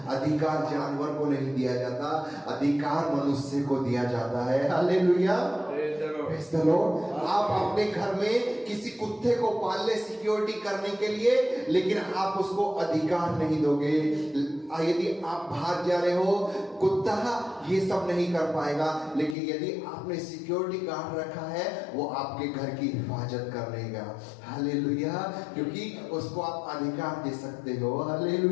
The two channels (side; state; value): right; drops out; at 19.4 s